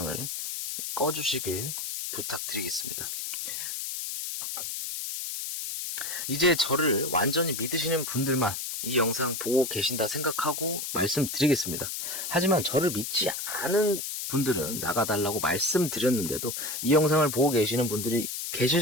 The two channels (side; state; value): left; noise; hiss, 5 dB below the sound